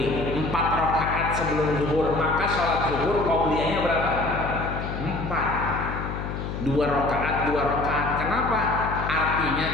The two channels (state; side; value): noise; left; hum, 5 dB below the sound